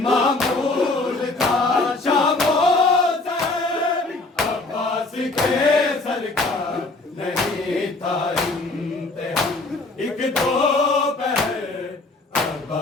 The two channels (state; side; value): quieter; right; 3.2 dB